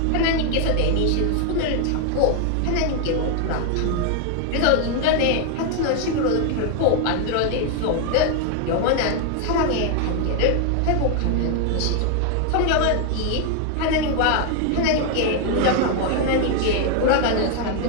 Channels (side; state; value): both; different; correlation 0.00